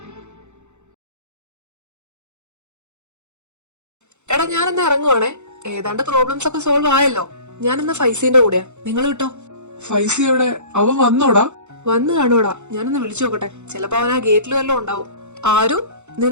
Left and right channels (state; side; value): late; left; 0.83 ms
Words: എടാ ഞാനെന്നാ ഇറങ്ങുവാണേ. ഏതാണ്ട് പ്രോബ്ലംസ് ഒക്കെ സോൾവ് ആയല്ലോ. ഞാനെന്നാ ഫൈസീന്റെ കൂടെയാ. നിങ്ങൾ കിട്ടോ? ഫൈസി എവിടെ? അവൻ വന്നോടാ? വന്നു കാണൂടാ. ഞാനൊന്ന് വിളിച്ചു നോക്കട്ടെ. ചിലപ്പോ അവൻ ആ ഗേറ്റിൽ വല്ലതും ഉണ്ടാവും. ആരു,